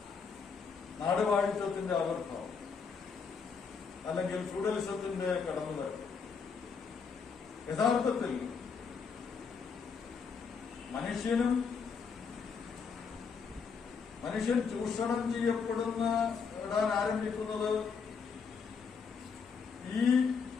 നാടുവാഴിത്വത്തിന്റെ ആവിർഭാവം അല്ലെങ്കിൽ ഫ്യൂഡലിസത്തിന്റെ കടന്നുവരവ്. യഥാർത്ഥത്തിൽ മനുഷ്യൻ ചൂഷണം ചെയ്യപ്പെടാൻ ആരംഭിക്കുന്നത് ഈ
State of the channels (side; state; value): right; quieter; 5.7 dB